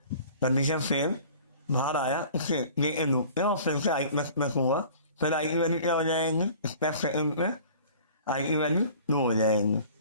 कंडीशन फेल बाहर आया, उससे ये लूप और फिर से आई प्लस प्लस हुआ, फिर आई की वैल्यू क्या हो जाएंगी स्टेप सेकंड में, आई की वैल्यू 2 हो जाएंगी,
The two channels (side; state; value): both; inverted; correlation -0.47